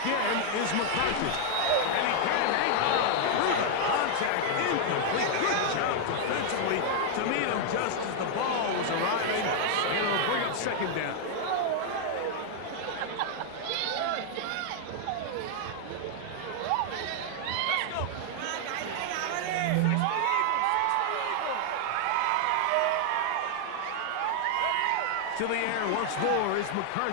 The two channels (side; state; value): both; different; correlation 0.00